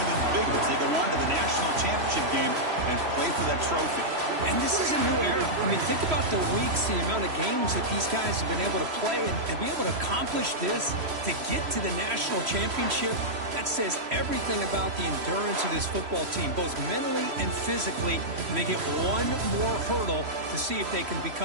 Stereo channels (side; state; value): left; late; 3.1 ms